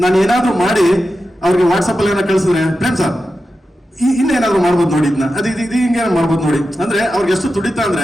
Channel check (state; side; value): normal; both; correlation 0.91